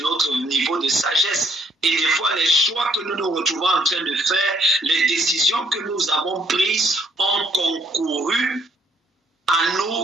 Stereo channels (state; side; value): normal; both; correlation 0.67